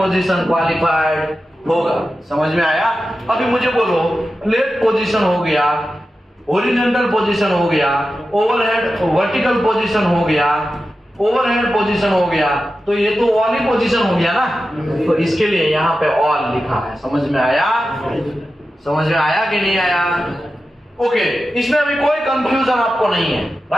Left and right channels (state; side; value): normal; both; correlation 0.92